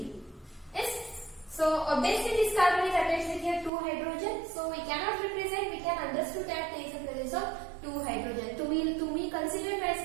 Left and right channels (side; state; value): left; drops out; at 3.7 s